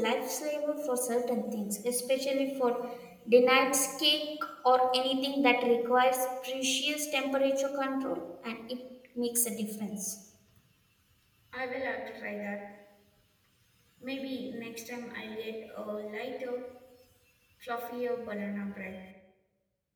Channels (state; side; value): identical; both; correlation 1.00